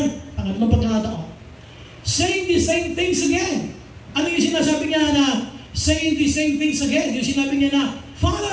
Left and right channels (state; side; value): identical; both; correlation 1.00